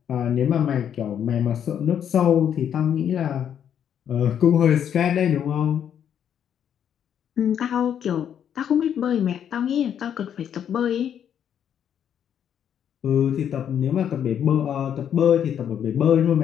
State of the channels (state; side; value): quieter; right; 9.1 dB